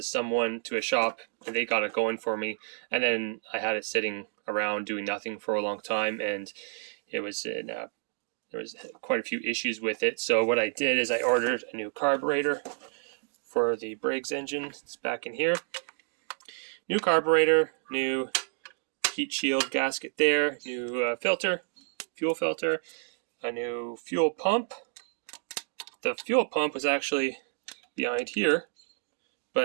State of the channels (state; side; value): silent; left; digital silence